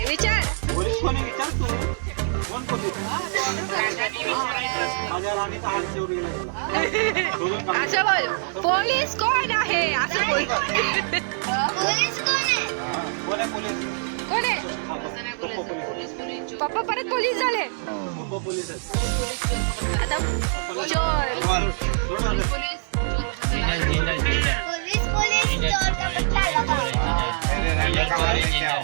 विचार. पोलीस कोणी विचार तू कोण पोलीस माझ्या राणीचा हात चोरीला गेला. असं बोल पोलीस कोण आहे असं बोल. कोण आहे पोलीस कोण आहे? पप्पा परत पोलीस झाले पप्पा पोलीस आहेत. आता चोर.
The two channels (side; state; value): left; silent; digital silence